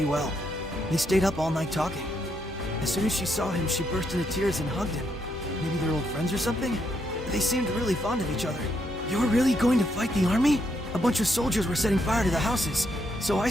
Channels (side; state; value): both; normal; correlation 0.77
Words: well. They stayed up all night talking. As soon as she saw him, she burst into tears and hugged him. Maybe they're old friends or something? They seemed really fond of each other. You're really going to fight the army? A bunch of soldiers were setting fire to the houses, so I